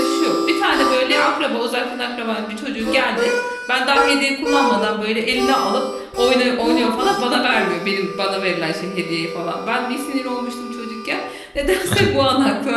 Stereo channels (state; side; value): identical; both; correlation 1.00